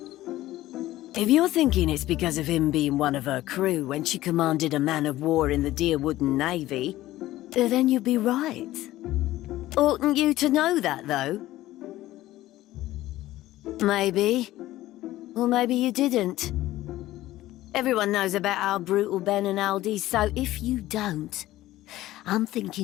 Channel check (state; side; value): quieter; right; 15.7 dB